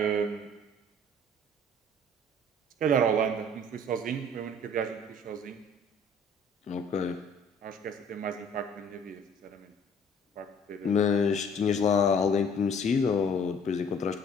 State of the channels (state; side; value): normal; both; correlation 0.54